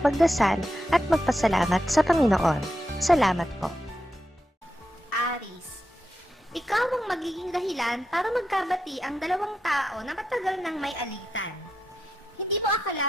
magdasal at magpasalamat sa Panginoon. Salamat po. Aries, ikaw ang magiging dahilan para magkabati ang dalawang tao na matagal nang may alitan. Hindi mo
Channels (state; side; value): normal; both; correlation 0.86